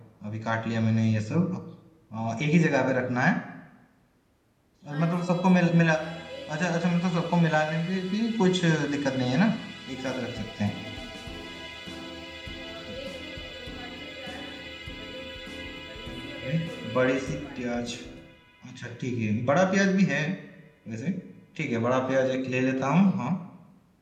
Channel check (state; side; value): identical; both; correlation 1.00